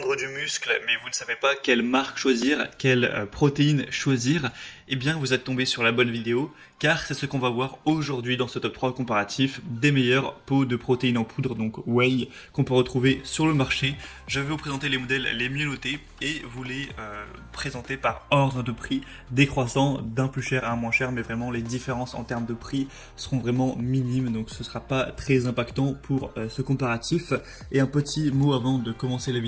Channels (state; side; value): identical; both; correlation 1.00